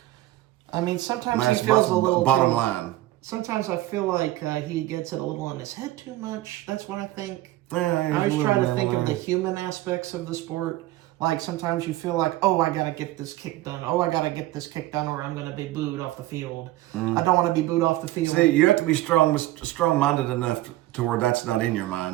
I mean, sometimes he feels a little bottom line. Sometimes I feel like he gets it a little in his head too much. That's what I think. I always try to think of the human aspects of the sport. Like sometimes you feel like, oh, I gotta get this kick done. Oh, I gotta get this kick done, or I'm gonna be booed off the field. I don't want to be booed off the field. See, you have to be strong-minded enough to where that's not in your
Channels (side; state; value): left; quieter; 16.5 dB